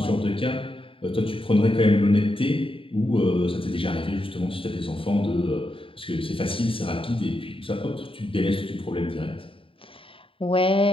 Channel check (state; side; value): late; right; 0.26 ms